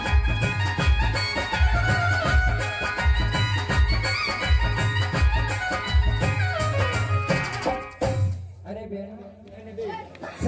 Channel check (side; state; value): both; identical; correlation 1.00